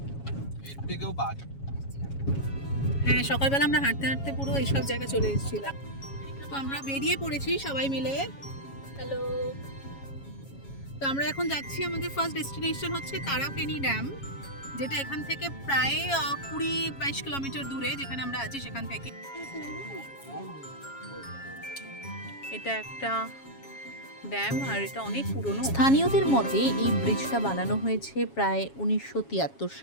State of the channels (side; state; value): right; late; 7.3 ms